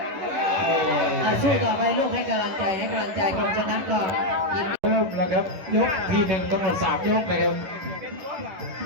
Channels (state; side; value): late; left; 11 ms